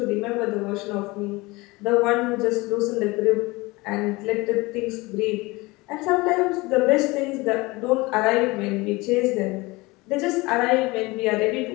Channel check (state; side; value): quieter; right; 22.8 dB